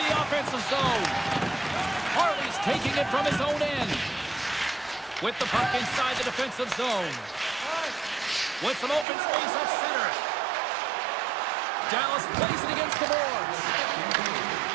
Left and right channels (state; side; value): drops out; left; at 9.1 s